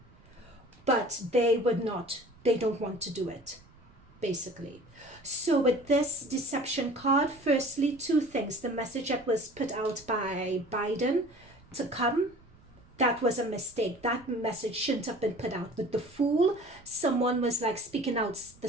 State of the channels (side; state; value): right; noise; rumble, 27 dB below the sound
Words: but they don't want to do it, basically. So with this deception card, firstly, two things. The message that was put out by Biden to come, that was a mistake. That message shouldn't have been put out. With the Fool, someone was like speaking out the